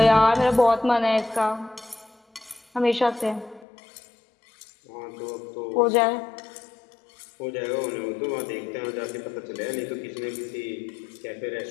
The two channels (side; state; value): right; drops out; at 3.7 s